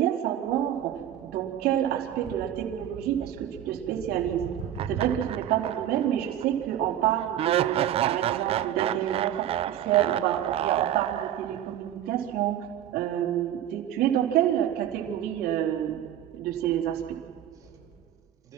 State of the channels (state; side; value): quieter; left; 11.1 dB